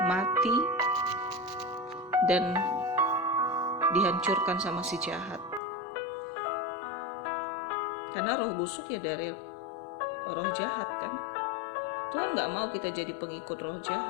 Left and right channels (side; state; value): right; drops out; at 5.6 s